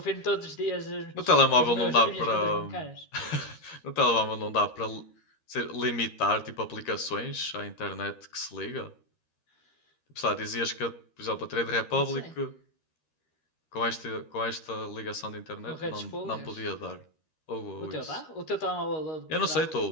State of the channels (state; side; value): late; right; 13 ms